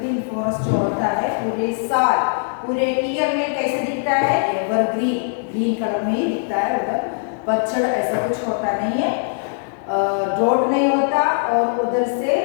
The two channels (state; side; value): silent; right; 65 dB below the other